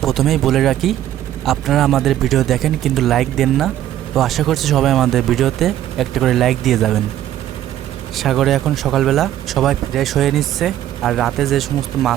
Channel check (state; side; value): quieter; left; 12.3 dB